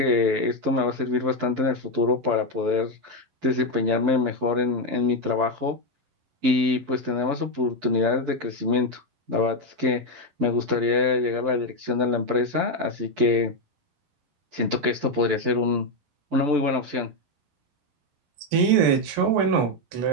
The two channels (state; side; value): late; left; 11 ms